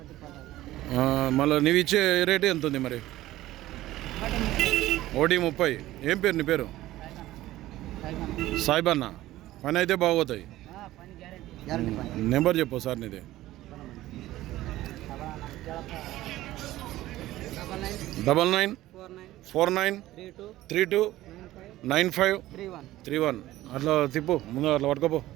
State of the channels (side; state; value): left; quieter; 15.8 dB